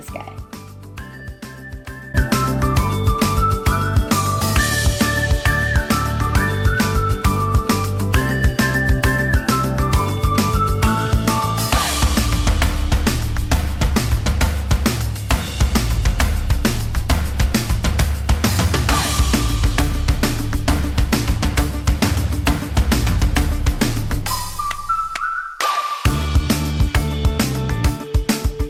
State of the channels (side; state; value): both; identical; correlation 1.00